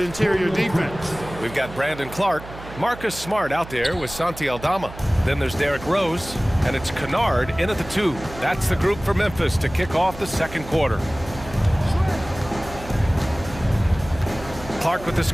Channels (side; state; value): right; noise; hum, 14 dB below the sound